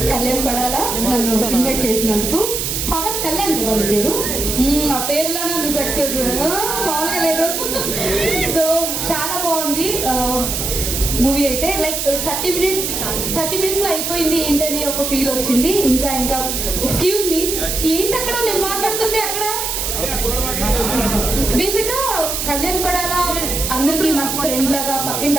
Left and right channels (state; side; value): noise; right; hiss, 2 dB below the sound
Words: Kalyan Padala నన్ను ఇన్వైట్ చేసినందుకు. పవన్ కళ్యాణ్ వాళ్ళ పేరు, ఆ పేరులోనే ఉంది సక్సెస్, మామూలుగా లేదు. సో చాలా బాగుంది మూవీ అయితే. లైక్ 30 మినిట్స్లో అయిపోయింది ఏంటని ఒక ఫీల్ వచ్చింది. ఇంకా ఎక్స్క్యూజ్ మీ, ఏంటి అక్కడ నేను మాట్లాడుతుంటే అక్కడ బేసిక్గా కళ్యాణ్ పడాల అందరికి మంచి ఫ్రెండ్ లాగా, పక్కింటి